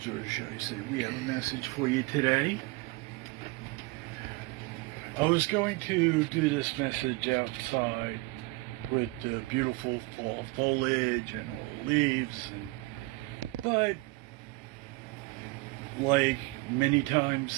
or should I say we have a message for you today. I was going to do this message outside with the beautiful fall foliage and all the leaves, but like many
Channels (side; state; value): left; quieter; 24.1 dB